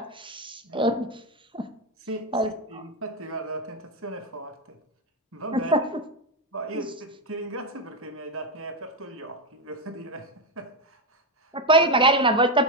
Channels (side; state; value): both; normal; correlation 0.09